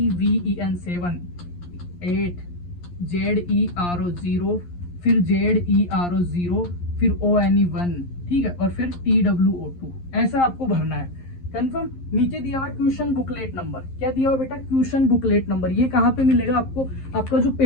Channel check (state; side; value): late; right; 11 ms